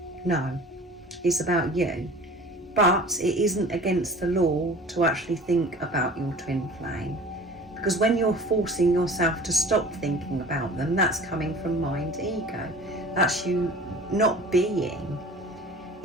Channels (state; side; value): normal; both; correlation 0.43